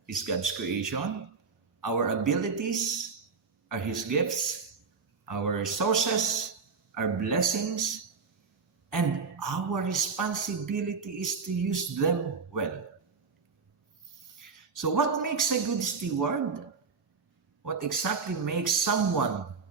is God's creation, our abilities are His gifts, our resources are blessings, and our responsibility is to use them well. So, what makes a good steward? What exactly makes someone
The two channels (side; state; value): left; quieter; 5.1 dB